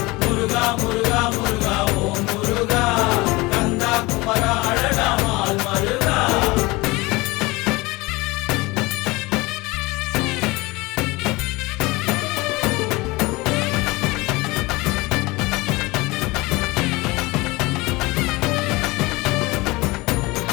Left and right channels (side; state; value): right; quieter; 22.7 dB